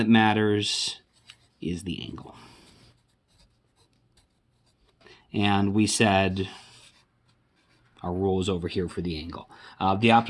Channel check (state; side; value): identical; both; correlation 1.00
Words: matters is the angle. and we said our rule is over here for the angle. The